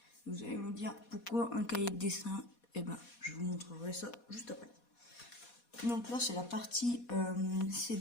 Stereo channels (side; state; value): right; late; 4.2 ms